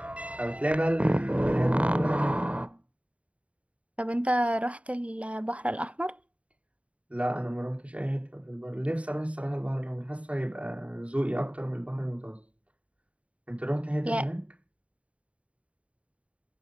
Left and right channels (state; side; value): late; left; 0.064 ms